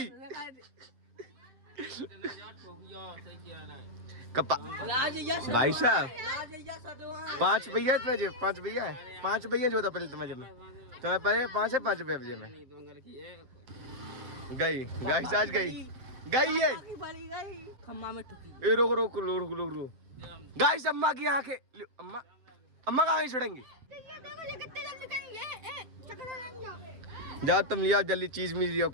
भाई साहब 5 भैया इतने जेब, 5 भैया है, 5 भैया जो था पहले तुम्हारे जेब में, तुम्हें पहले 5 है, 5 रुपये जेब में गई। गाइस आज गई है खम्मा में ठुकी। ए रोक रोक रोक रोक रोक। गाइस अम्मा की आंखें, अम्मा अम्मा कहाँ छोड़ेंगी? जाओ तुम लिया जल्दी, चीज मिल लिया,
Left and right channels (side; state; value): left; late; 7.7 ms